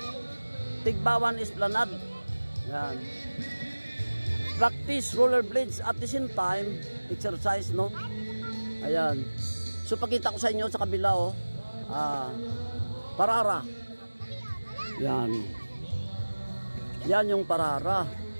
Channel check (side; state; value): both; inverted; correlation -1.00